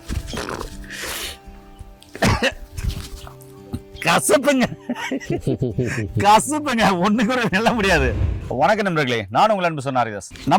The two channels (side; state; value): both; identical; correlation 1.00